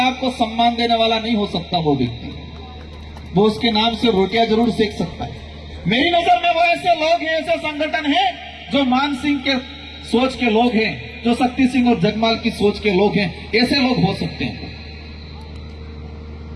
को सम्मान देने वाला नहीं हो सकता। वो व्यक्ति, वो उसके नाम से रोटियां जरूर सेक सकता है। मेरी नजर में वो ऐसे लोग हैं, ऐसे संगठन हैं जो मान सिंह के सोच के लोग हैं, जो शक्ति सिंह और जगमाल की सोच के लोग हैं, ऐसे लोग हो सकते हैं।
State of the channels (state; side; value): identical; both; correlation 1.00